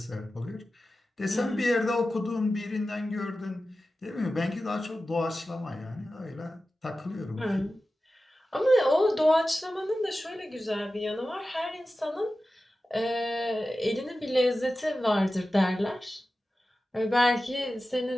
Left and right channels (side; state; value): both; normal; correlation 0.94